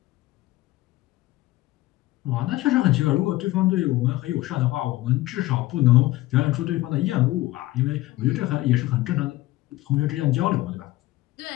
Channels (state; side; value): quieter; right; 17.8 dB